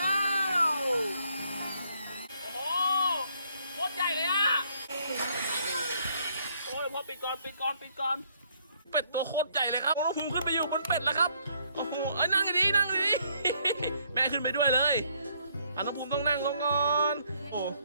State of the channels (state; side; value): inverted; both; correlation -0.68